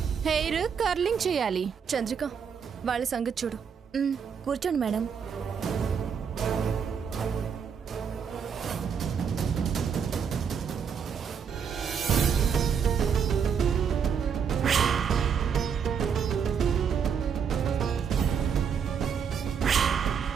హెయిర్ కర్లింగ్ చేయాలి. చంద్రిక, వాళ్ళ సంగతి చూడు. కూర్చోండి మేడం.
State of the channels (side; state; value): left; quieter; 7.0 dB